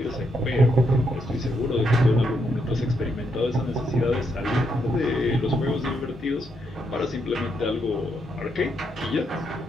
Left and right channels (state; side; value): normal; both; correlation 0.78